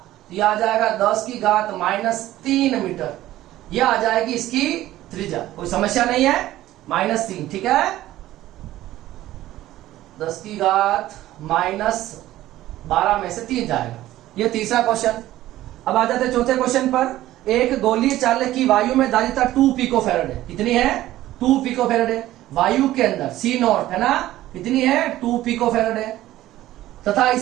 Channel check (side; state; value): left; quieter; 14.9 dB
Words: ये आ जाएगा 10 की घात -3 मीटर। ये आ जाएगी इसकी त्रिज्या, कोई समस्या नहीं है, -3, ठीक है। 10 की घात -12 में से 3 जाएगा। ये तीसरा क्वेश्चन। अब आ जाते चौथे क्वेश्चन पर। एक गोलीय चालक की वायु में धारिता 2 पिको फैराड है। कितनी है 2 पिको फैराड है। वायु के अंदर C0 है ना, कितनी है 2 पिको फैराड है। तथा